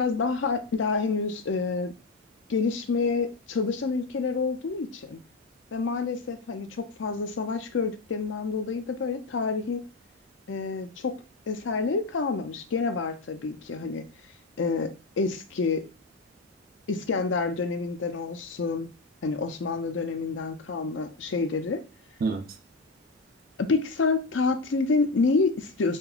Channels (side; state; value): right; quieter; 3.7 dB